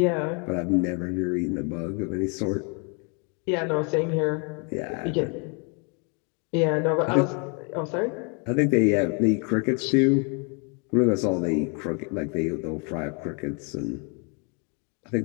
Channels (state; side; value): quieter; right; 36.0 dB